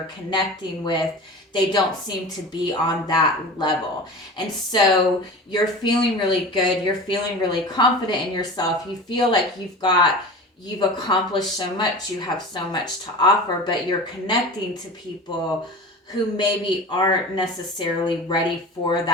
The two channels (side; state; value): both; normal; correlation 0.34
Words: connecting with, they don't seem to be on that level. And so you're feeling really good, you're feeling really confident in yourself, you feel like you've accomplished so much, you have so much to offer, but you're connecting to people who maybe aren't necessarily ready for